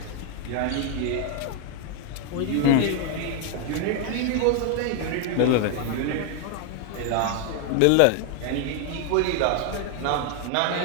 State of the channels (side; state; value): both; different; correlation 0.01